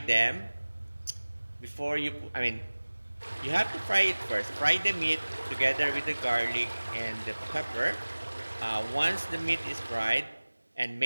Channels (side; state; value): both; inverted; correlation -1.00